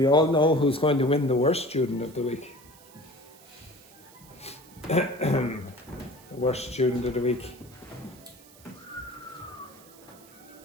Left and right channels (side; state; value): right; noise; hiss, 23 dB below the sound